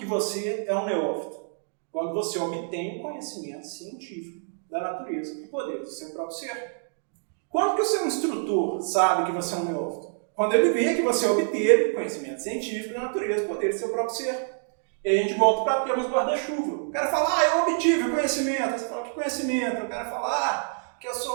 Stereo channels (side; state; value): left; silent; digital silence